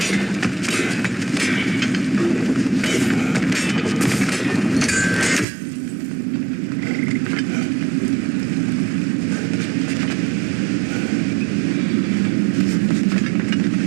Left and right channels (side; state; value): left; drops out; at 5.5 s